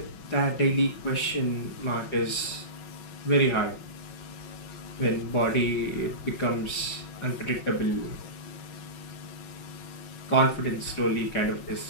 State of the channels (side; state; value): right; late; 5.4 ms